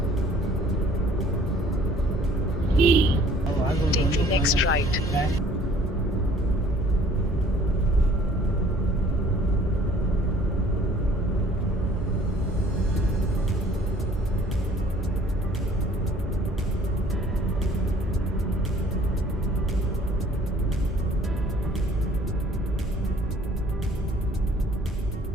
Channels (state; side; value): normal; both; correlation 0.54